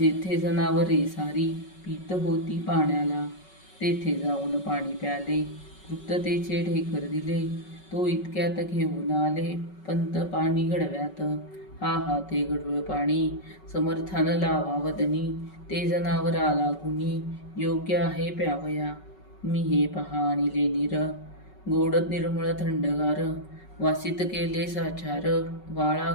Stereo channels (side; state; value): right; late; 5.3 ms